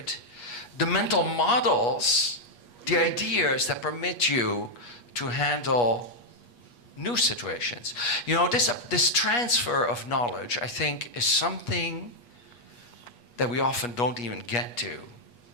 the mental models, the ideas that permit you to handle new situations. This transfer of knowledge, I think, is something that we often don't even get to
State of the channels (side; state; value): right; late; 8.4 ms